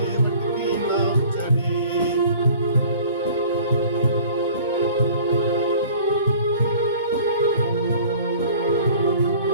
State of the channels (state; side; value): inverted; both; correlation -0.49